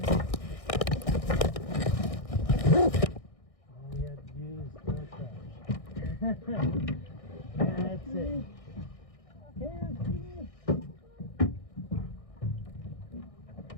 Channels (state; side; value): late; right; 1.6 ms